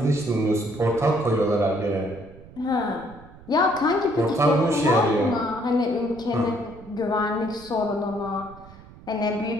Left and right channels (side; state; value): right; noise; rumble, 20 dB below the sound